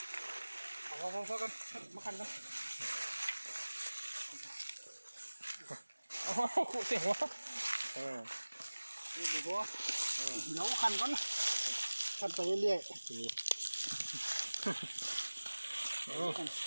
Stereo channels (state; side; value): inverted; both; correlation -1.00